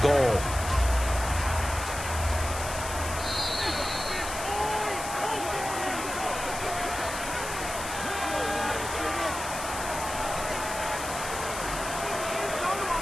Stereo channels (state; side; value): noise; left; hiss, 8 dB below the sound